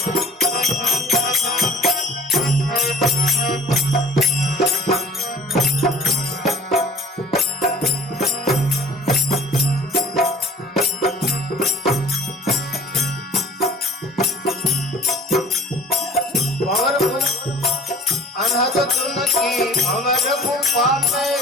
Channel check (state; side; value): normal; both; correlation 0.47